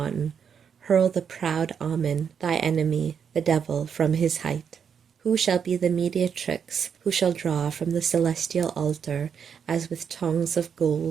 hurl the proud Ammon, thy enemy, the devil, from his height. Who shall be the mediatrix, who shall draw from the celestial altar, as with tongues of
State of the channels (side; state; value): left; quieter; 7.2 dB